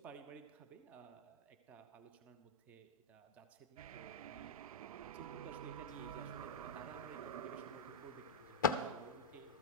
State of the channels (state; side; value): normal; both; correlation -0.02